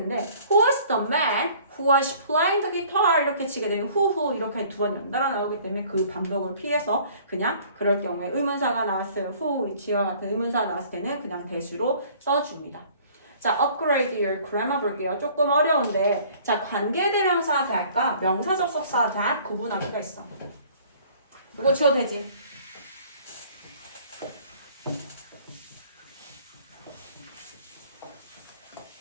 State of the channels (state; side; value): inverted; both; correlation -0.53